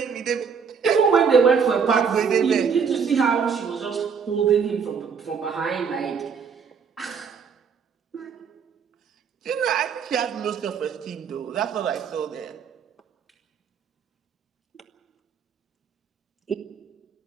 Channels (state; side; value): quieter; left; 6.3 dB